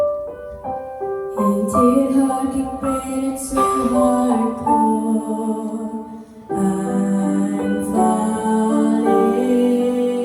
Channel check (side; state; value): both; identical; correlation 1.00